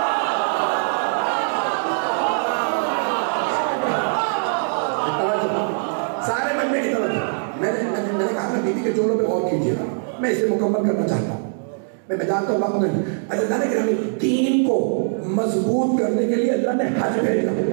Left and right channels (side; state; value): left; silent; digital silence